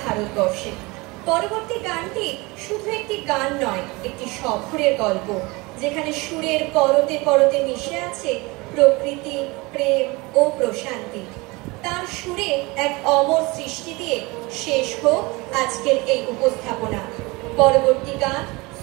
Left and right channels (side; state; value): left; quieter; 24.3 dB